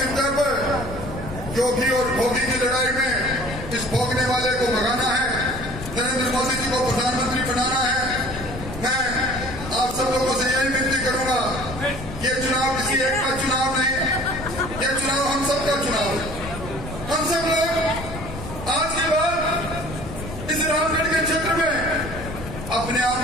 तरफ योगी और भोगी की लड़ाई में इस भोगने वाले को भगाना है, नरेंद्र मोदी जी को प्रधानमंत्री बनाना है। मैं आप सब लोगों से यही विनती करूंगा, ये चुनाव किसी एक का चुनाव नहीं, ये चुनाव हम सबका चुनाव है। हम सब लोग आज के बाद इस रामगढ़ के क्षेत्र में अपने आप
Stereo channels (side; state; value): left; noise; rumble, 10 dB below the sound